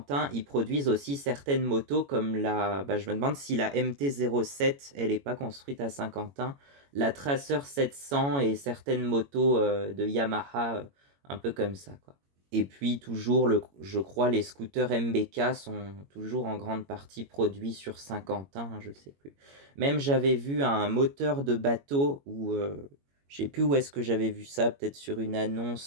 ils produisent aussi certaines motos comme je me demande si la MT-07, elle n'est pas construite à Saint-Quentin, la Tracer 700 et certaines motos de Yamaha, un peu comme ça, quoi. Et puis toujours, je crois, les scooters MBK sont toujours en grande partie produits sur Saint-Quentin, hein, je sais plus. Même j'avais vu un moteur de bateau où, je sais plus où est-ce que j'avais vu ça, peut-être sur une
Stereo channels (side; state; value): left; late; 21 ms